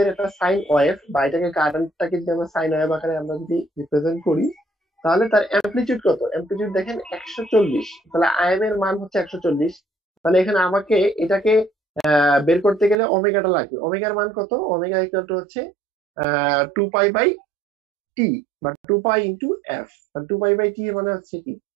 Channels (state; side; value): drops out; left; at 13.0 s